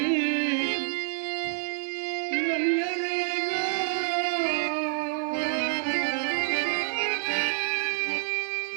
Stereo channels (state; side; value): silent; left; digital silence